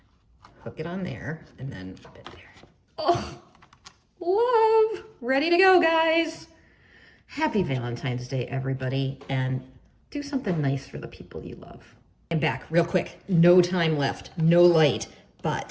hook it on there, and then pop it there. Oh, love. Ready to go, guys. Happy Valentine's Day, everybody. And do something nice for the people you love. And back real quick, no time left, no light,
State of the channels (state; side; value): identical; both; correlation 1.00